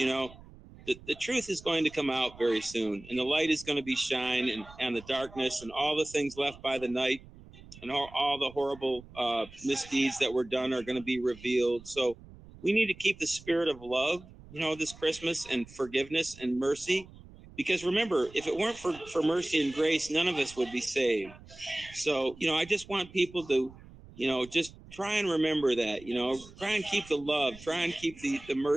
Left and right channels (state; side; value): noise; right; rumble, 20 dB below the sound